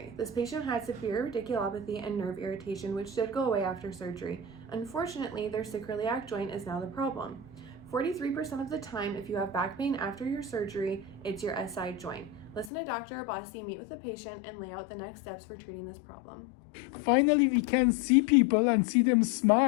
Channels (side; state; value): right; drops out; at 12.7 s